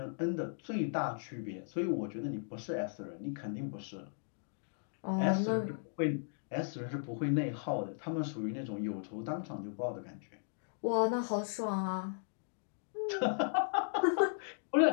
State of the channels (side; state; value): right; silent; digital silence